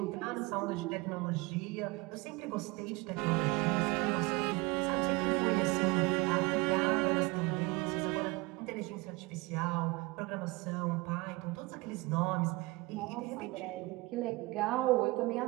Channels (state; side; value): quieter; left; 23.7 dB